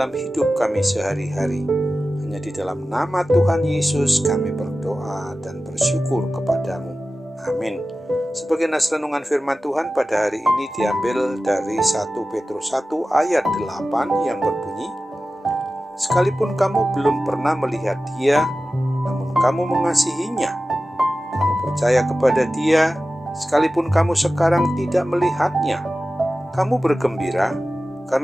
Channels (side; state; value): both; normal; correlation 0.95